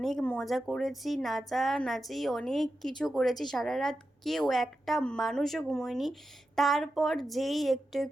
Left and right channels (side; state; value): both; normal; correlation 0.90